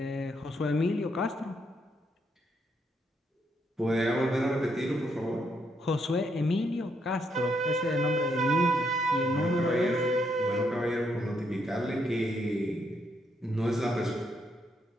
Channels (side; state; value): both; normal; correlation 0.76